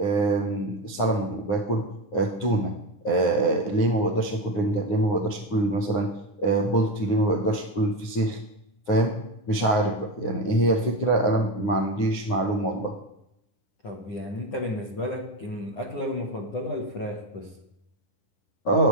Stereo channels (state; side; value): late; right; 9.7 ms